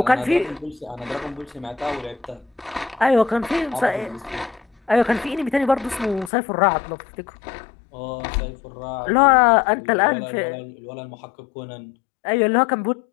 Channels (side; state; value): right; drops out; at 6.3 s